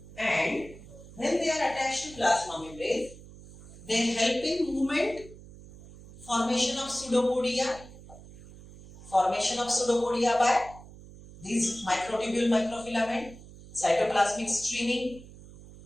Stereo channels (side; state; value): right; noise; hum, 18 dB below the sound